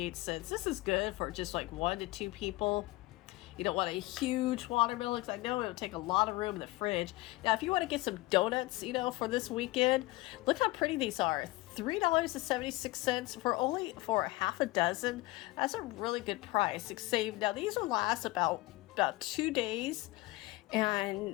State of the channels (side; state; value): right; quieter; 20.2 dB